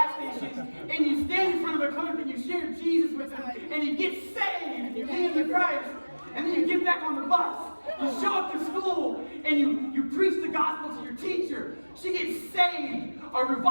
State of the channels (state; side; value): inverted; both; correlation -1.00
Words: station, and you stand in front of the clerk, and you share Jesus with him, and he gets saved, and you lead him to Christ. And then you get back on the bus, you show up to school, and you preach the gospel to your teacher. She gets saved, a